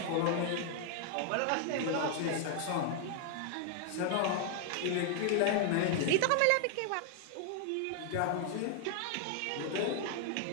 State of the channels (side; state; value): both; different; correlation 0.00